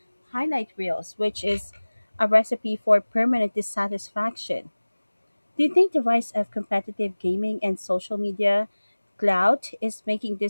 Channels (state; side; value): inverted; both; correlation -1.00